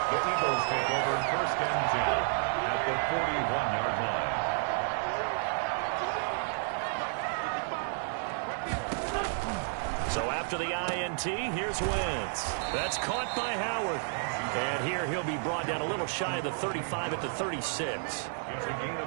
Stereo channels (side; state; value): left; silent; 57 dB below the other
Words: The Eagles take over 1st and 10 at the 41-yard line. So after the INT, here's Wentz. That's caught by Howard. And here he'll be brought down a little shy of the 35 at the 36.